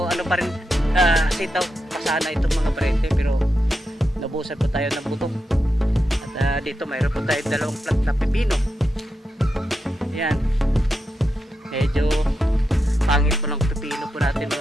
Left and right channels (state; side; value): normal; both; correlation 0.87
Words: pa rin sitaw pasana itong mga paryente, pero nabusan po tayo ng buto. At dito mayroon po tayo 2 plant na pipino. Yan, medyo pangit po ng pipino po natin